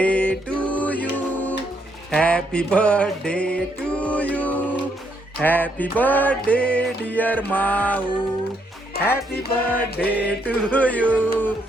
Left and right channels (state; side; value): normal; both; correlation 0.74